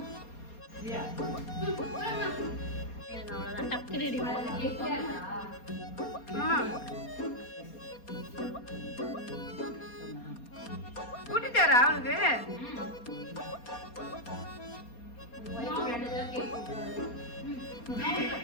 அவ்வளவுதான், டக்கு ரெடி கூட்டிட்டாரா அவனுக்கு?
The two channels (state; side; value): late; right; 4.2 ms